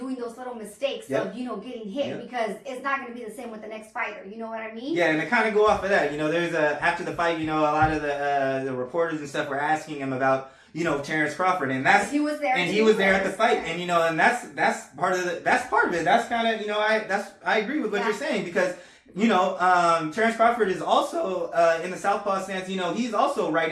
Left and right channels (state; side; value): identical; both; correlation 1.00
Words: those little mistakes of, getting hit because it's not going to be the same with the next fighter. You know what I mean? Yeah, and to kind of go off of that, there's after the fight, a lot of the reporters and stuff were asking him about, Terrence Crawford, and he was there at the fight, and and that's part of it. That's kind of, I agree with what you're saying because, Terrence Crawford is also in the southpaw stance. He's also